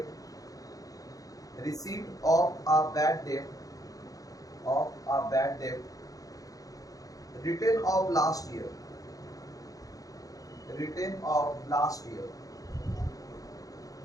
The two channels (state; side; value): late; right; 0.17 ms